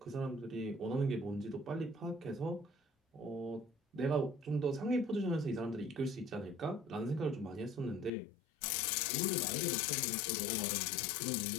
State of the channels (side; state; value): right; drops out; at 8.1 s